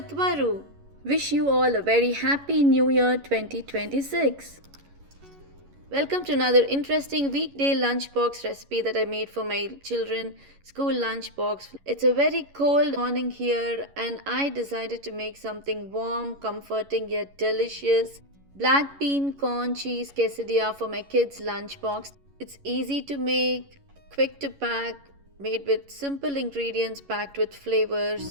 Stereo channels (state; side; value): late; left; 11 ms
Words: Varu. Wish you all a very happy New Year 2026. Welcome to another interesting weekday lunchbox recipe that I made for my children school lunchbox. It's a very cold morning here and I decided to make something warm, comforting yet delicious. Black bean corn cheese quesadilla for my kids lunchbox. It's easy to make, quick to pack, made with simple ingredients packed with flavor.